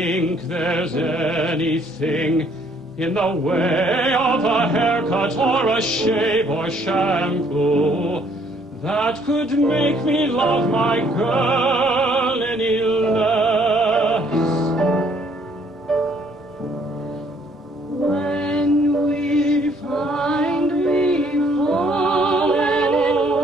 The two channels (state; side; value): normal; both; correlation 0.64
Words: there's anything in the way of a haircut or a shave or shampoo that could make me love my girl any less. When we find we